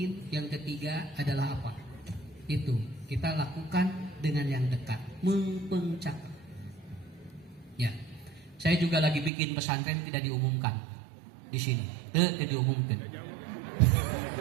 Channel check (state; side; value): drops out; left; at 9.3 s